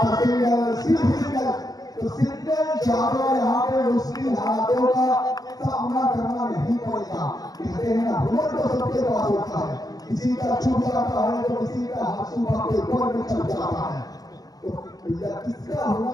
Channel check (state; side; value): late; right; 0.18 ms